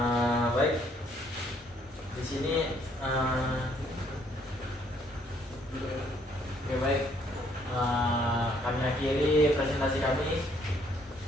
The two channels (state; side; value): normal; both; correlation 0.66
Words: Baik. Di sini oke, baik. Kami akhiri presentasi kami.